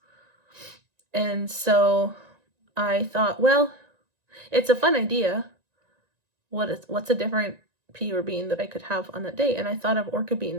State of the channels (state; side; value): late; left; 1.9 ms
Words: And so I thought, well, it's a fun idea. What's a different pea or bean that I could have on that day? And I thought of orca